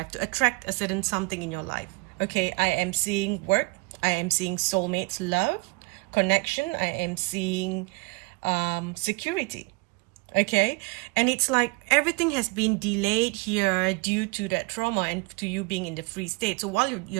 to attract a certain something in your life. Okay, I am seeing work, I am seeing soulmates, love, connection, I am seeing security. Okay, and it's like everything has been delayed here due to that trauma and to you being in the free state. So while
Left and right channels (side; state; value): left; quieter; 27.9 dB